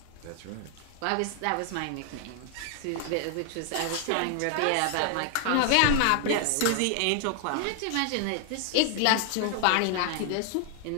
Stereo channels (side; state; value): both; different; correlation 0.00